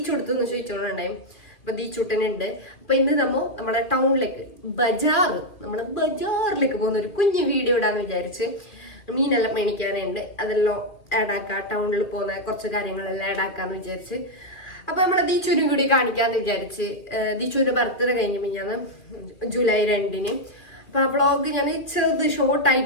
കൊടുത്തു എന്ന് ചോദിച്ചോണ്ടായി. അപ്പൊ ദീച്ചൂട്ടനുണ്ട്. അപ്പൊ ഇന്ന് നമ്മളെ ടൗണിലേക്ക് ബജാറിലേക്ക് പോകുന്ന ഒരു കുഞ്ഞു വീഡിയോ ഇടാന്ന് വിചാരിച്ച്. മീനെല്ലാം മേടിക്കാനുണ്ട്, അതെല്ലാം ആഡ് ആക്കാം. ടൗണിൽ പോകുന്ന കുറച്ച് കാര്യങ്ങളെല്ലാം ആഡ് ആക്കാന്ന് വിചാരിച്ച്. അപ്പൊ നമ്മളെ ദീച്ചുവിനും കൂടി കാണിക്കാന്ന് വിചാരിച്ച്. ദീച്ചുവിന്റെ ബർത്ത്ഡേ കഴിഞ്ഞ് മിഞ്ഞാന്ന് ജൂലൈ 2-ന്. അപ്പൊ ആ വ്ളോഗ് ഞാൻ ചെറുത്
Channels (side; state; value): right; late; 2.4 ms